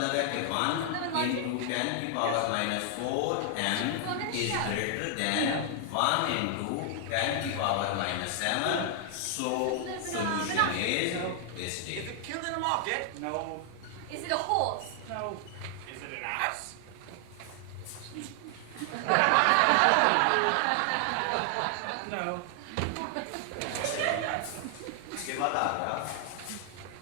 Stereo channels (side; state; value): both; different; correlation 0.00